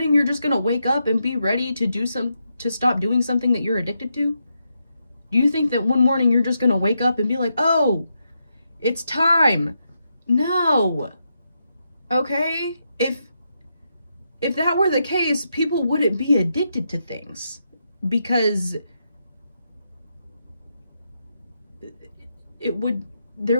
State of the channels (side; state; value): both; inverted; correlation -0.83